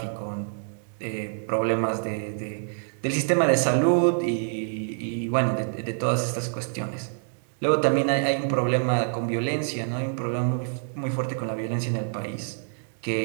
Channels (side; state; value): left; silent; digital silence